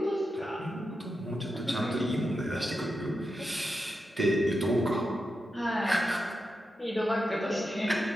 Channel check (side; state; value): both; normal; correlation 0.88